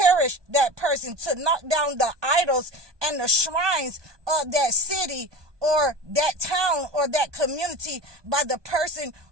that person, to knock down the idols and the shrines of that city or that town or that community by the person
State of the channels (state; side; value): late; left; 1.2 ms